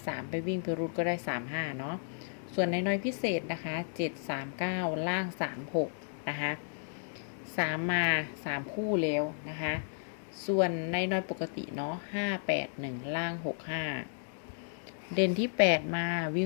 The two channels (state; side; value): silent; right; digital silence